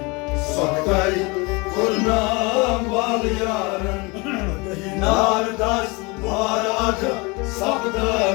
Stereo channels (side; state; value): right; quieter; 27.0 dB